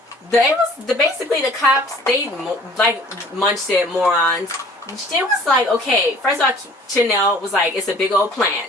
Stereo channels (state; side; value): normal; both; correlation 0.51